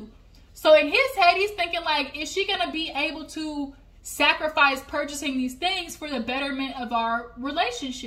So in his head, he's thinking like, is she gonna be able to sacrifice purchasing these things for the betterment of our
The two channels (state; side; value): identical; both; correlation 1.00